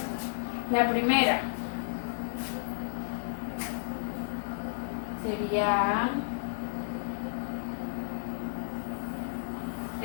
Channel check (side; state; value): right; silent; digital silence